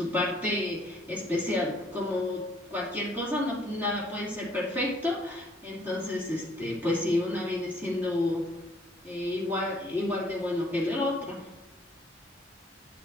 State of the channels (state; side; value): normal; both; correlation 0.63